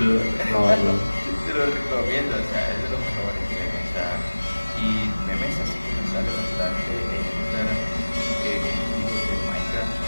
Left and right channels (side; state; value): both; inverted; correlation -1.00